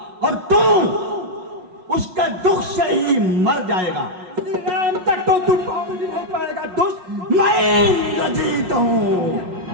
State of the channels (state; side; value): late; left; 5.4 ms